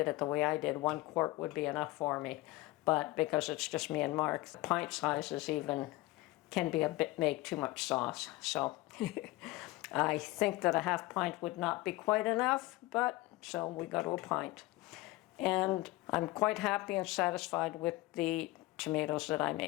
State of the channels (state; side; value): quieter; right; 19.5 dB